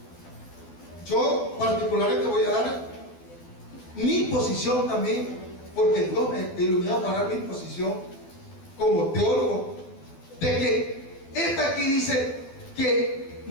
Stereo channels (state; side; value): late; right; 12 ms